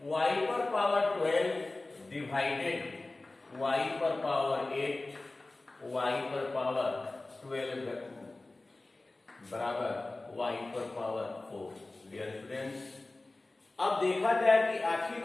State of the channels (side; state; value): right; quieter; 3.0 dB